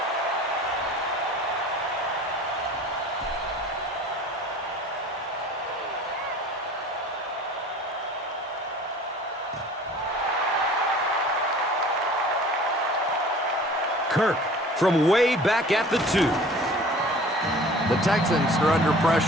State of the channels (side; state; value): both; normal; correlation 0.45